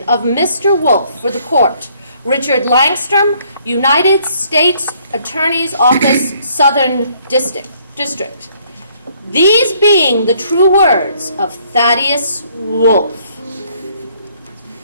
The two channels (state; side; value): inverted; both; correlation -0.65